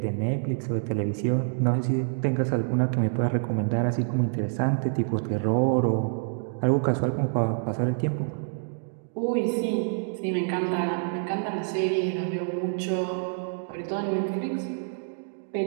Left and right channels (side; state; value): left; silent; digital silence